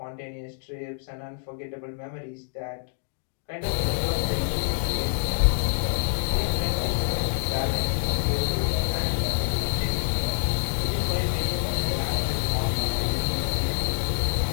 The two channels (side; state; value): right; silent; digital silence